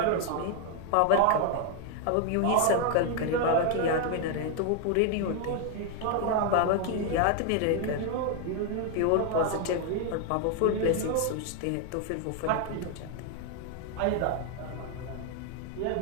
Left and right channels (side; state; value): both; different; correlation 0.00